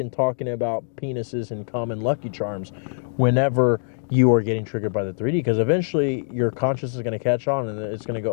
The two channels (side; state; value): right; silent; digital silence